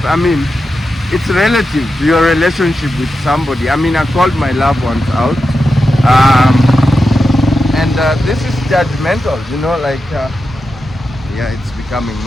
I mean, it's relative to your relationship with somebody. I mean, I called my loved ones out, and this is judgmental, you know, like, yeah, it's becoming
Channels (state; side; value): normal; both; correlation 0.89